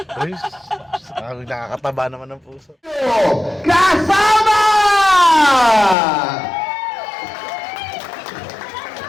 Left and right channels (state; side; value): drops out; right; at 6.0 s